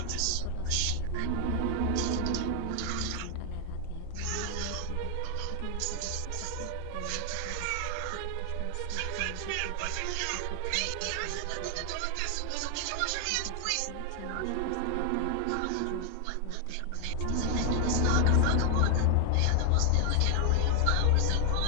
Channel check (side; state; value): both; different; correlation 0.00